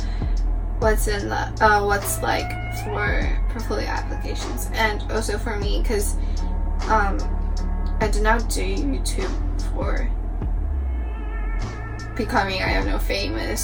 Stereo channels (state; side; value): identical; both; correlation 1.00